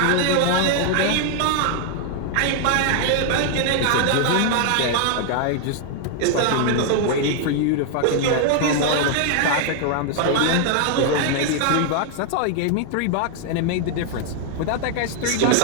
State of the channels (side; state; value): both; different; correlation 0.00